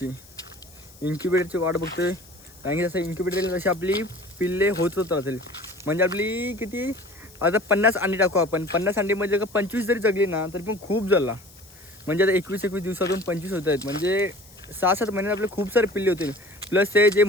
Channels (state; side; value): noise; left; hiss, 24 dB below the sound